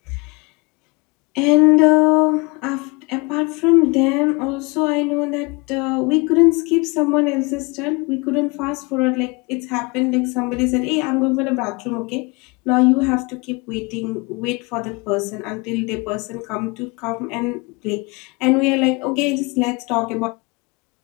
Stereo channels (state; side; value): quieter; right; 28.1 dB